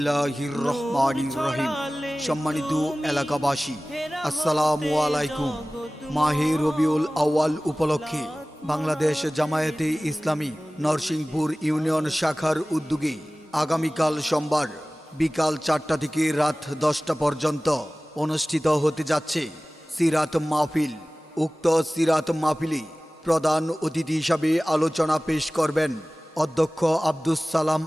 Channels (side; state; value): both; normal; correlation 0.98